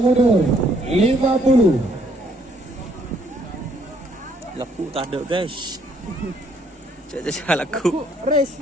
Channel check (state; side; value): normal; both; correlation 0.67